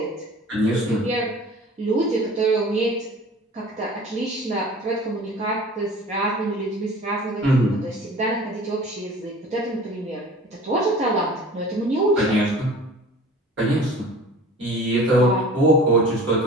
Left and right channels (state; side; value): normal; both; correlation 0.43